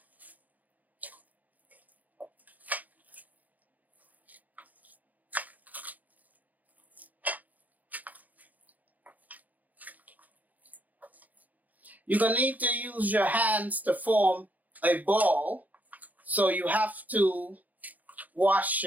You're going to need to use your hands to form a ball, so you have to wash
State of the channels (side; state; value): left; late; 0.080 ms